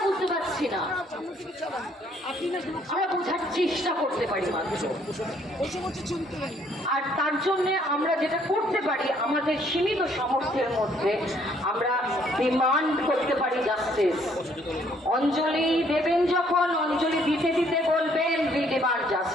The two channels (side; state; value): both; normal; correlation 0.65